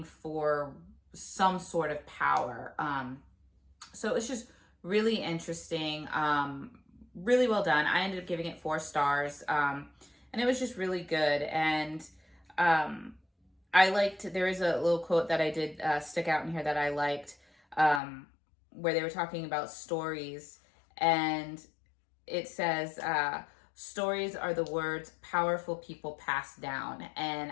for some sort of power. So it's just really interesting, really well done. I ended up giving it 4 stars, and it was just really good. And I liked, there is a little quote that I did stick out in here that I liked, where they were talking about stories, and it says, stories are the words powerful people pass down. And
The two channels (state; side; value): drops out; right; at 18.0 s